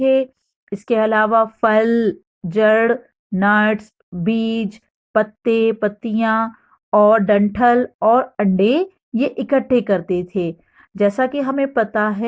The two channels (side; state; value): both; identical; correlation 1.00